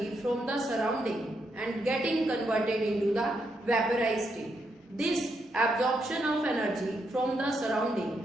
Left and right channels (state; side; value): normal; both; correlation 0.80